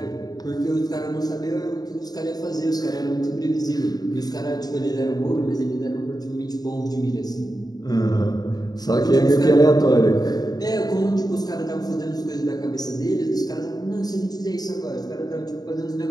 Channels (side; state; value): right; late; 0.19 ms